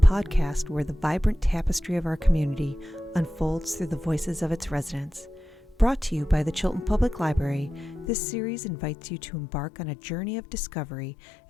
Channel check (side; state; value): right; drops out; at 8.1 s